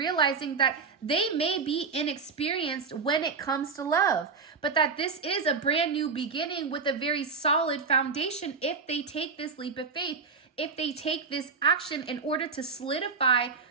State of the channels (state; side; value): quieter; left; 5.0 dB